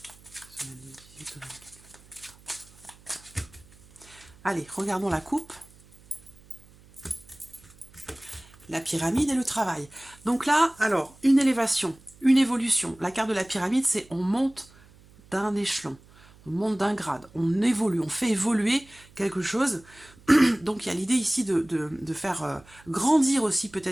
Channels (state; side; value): noise; right; hum, 25 dB below the sound